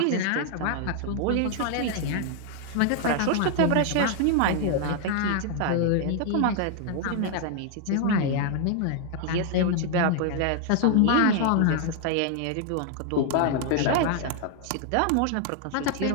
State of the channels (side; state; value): both; different; correlation 0.00